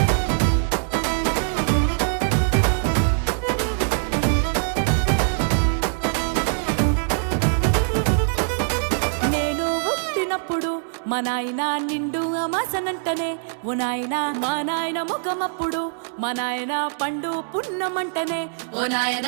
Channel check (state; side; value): silent; left; digital silence